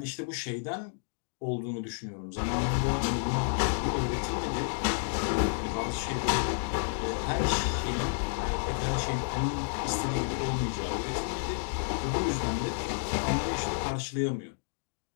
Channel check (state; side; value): silent; right; digital silence